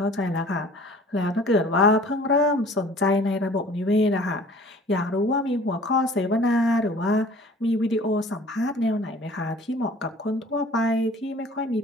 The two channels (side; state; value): both; normal; correlation 0.49